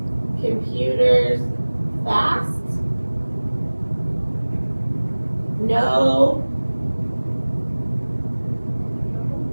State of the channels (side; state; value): both; inverted; correlation -1.00